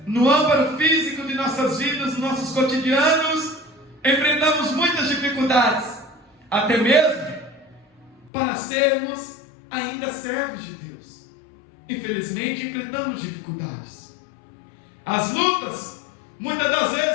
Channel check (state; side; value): drops out; right; at 8.3 s